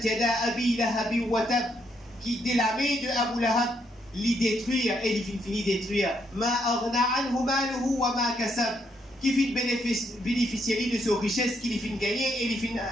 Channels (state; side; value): normal; both; correlation 0.75